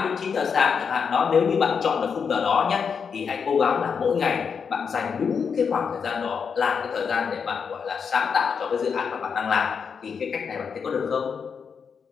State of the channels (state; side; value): quieter; right; 6.3 dB